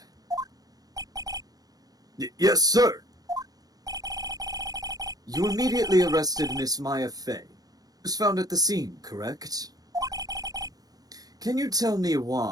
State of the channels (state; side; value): late; left; 0.18 ms